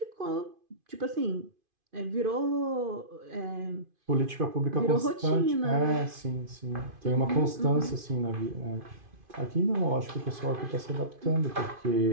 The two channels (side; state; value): left; late; 2.5 ms